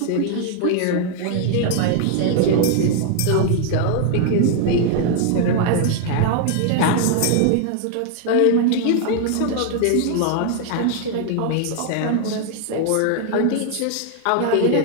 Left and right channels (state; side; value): different; both; correlation 0.00